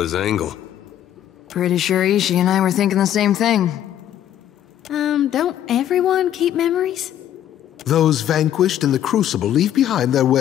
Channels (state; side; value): quieter; right; 11.0 dB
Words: angle. Pretty sure Ishi and I were thinking the same thing. Don't everyone keep memories? Those vanquished in the Crucible leave behind their